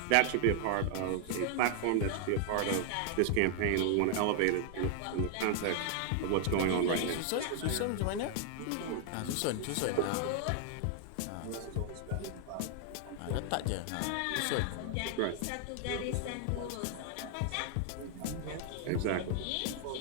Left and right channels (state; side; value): different; both; correlation 0.00